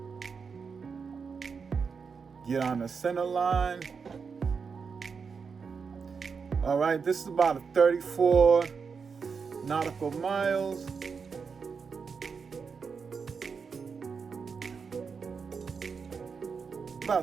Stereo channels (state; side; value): quieter; left; 5.6 dB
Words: Get on the center line. All right, this is about 34 nautical miles.